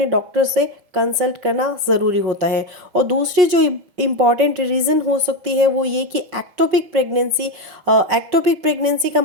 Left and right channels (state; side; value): late; left; 5.5 ms